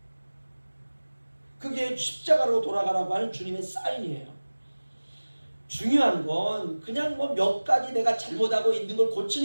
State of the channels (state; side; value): inverted; both; correlation -1.00